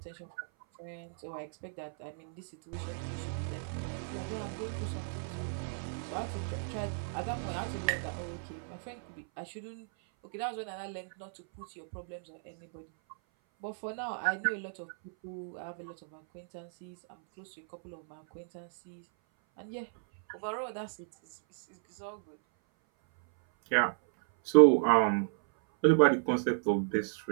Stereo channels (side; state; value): left; silent; 56 dB below the other